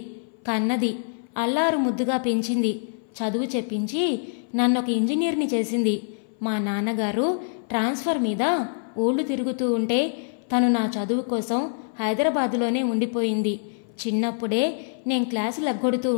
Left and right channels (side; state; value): right; silent; 58 dB below the other